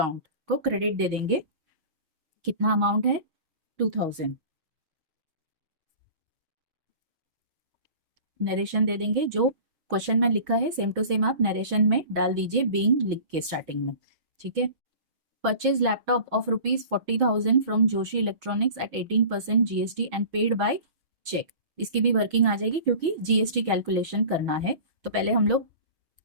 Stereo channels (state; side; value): late; left; 6.3 ms